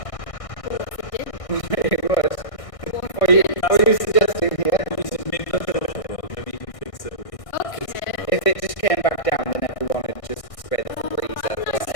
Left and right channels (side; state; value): right; late; 1.6 ms